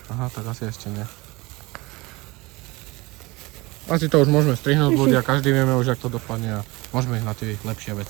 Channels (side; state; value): left; quieter; 23.1 dB